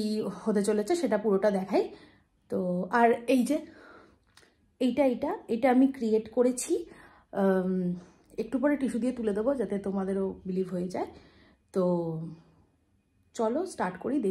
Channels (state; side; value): identical; both; correlation 1.00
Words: হতে চলেছে সেটা পুরোটা দেখাই। তো আর এই যে এইটা আমি ক্রিয়েট করেছি, একটু পরে টিস্যু দিয়ে তুলে দেবো যাতে তোমাদেরও বিলিভ হয়ে যায়। তো চলো স্টার্ট করি,